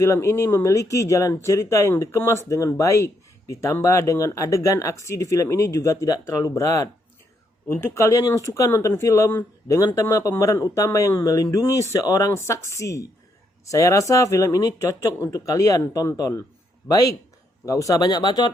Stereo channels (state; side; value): normal; both; correlation 0.76